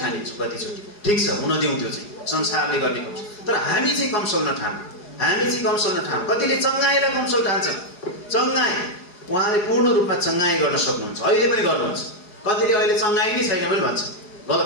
कतिचोटि, ठिक छ, हुन दिउँ, त्यो चाहिँ संसारले गर्ने कमसल। तर हामी चाहिँ कमसल नठान, हामी चाहिँ कमसल नठान। कतिले चङ्गाईलाई कमसल ठान्छन्। चङ्गाई उहाँले पूर्ण रूपमा चङ्गाई गर्न सक्नुहुन्छ, अहिले पनि गर्नुहुन्छ। कतिले अहिले चङ्गाई नै छैन पनि भन्छ,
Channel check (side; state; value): right; late; 4.9 ms